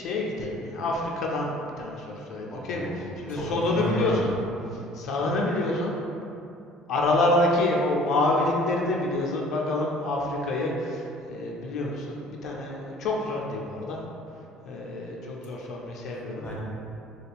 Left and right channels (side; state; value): both; normal; correlation 0.51